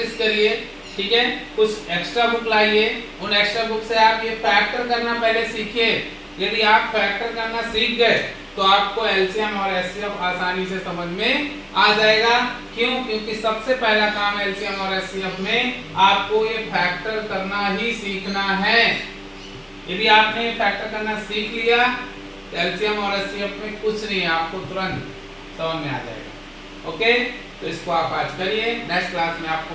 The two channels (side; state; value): both; identical; correlation 1.00